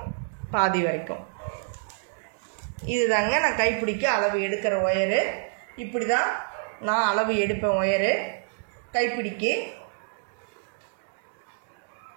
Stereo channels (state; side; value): silent; left; digital silence